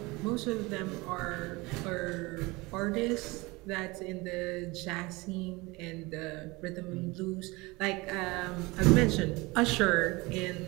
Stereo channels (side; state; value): left; quieter; 23.5 dB